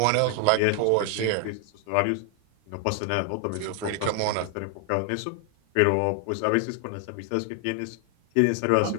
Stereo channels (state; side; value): different; both; correlation 0.00